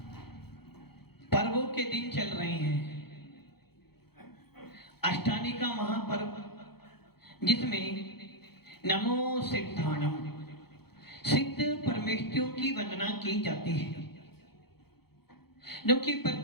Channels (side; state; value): right; late; 0.96 ms